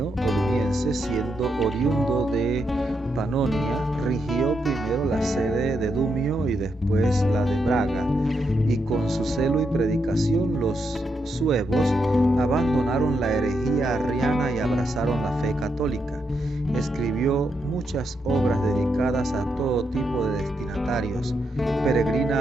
o Dumiense, siendo oriundo de Panonia, rigió primero la sede de Dumio y después la de Braga, y con su celo y predicación los suevos abandonaron la herejía arriana y abrazaron la fe católica. Escribió muchas obras dedicadas a todo tipo de destinatarios.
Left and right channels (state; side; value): normal; both; correlation 0.82